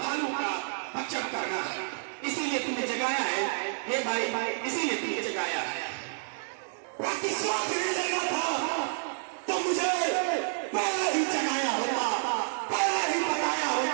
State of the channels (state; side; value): silent; left; digital silence